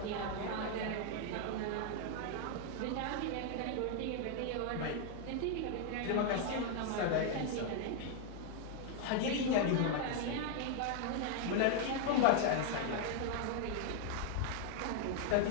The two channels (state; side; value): different; both; correlation 0.00